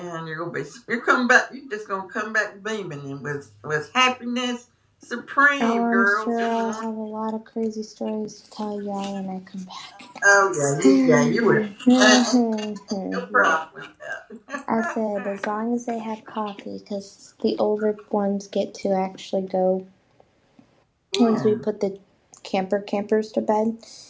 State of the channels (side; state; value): both; identical; correlation 1.00